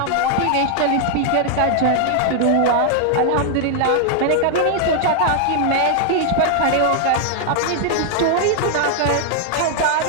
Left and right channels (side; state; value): both; different; correlation 0.00